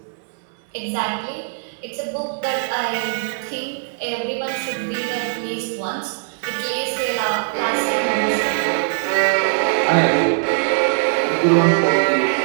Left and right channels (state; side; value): silent; left; digital silence